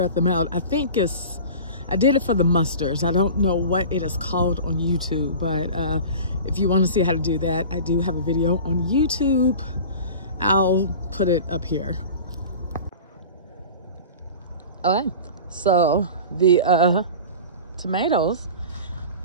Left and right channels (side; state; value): both; inverted; correlation -0.36